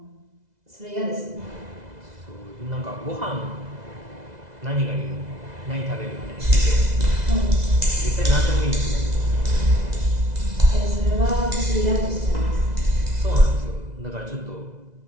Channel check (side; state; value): left; late; 2.0 ms